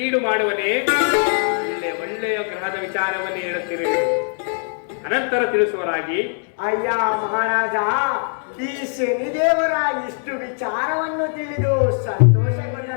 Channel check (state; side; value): silent; right; 56 dB below the other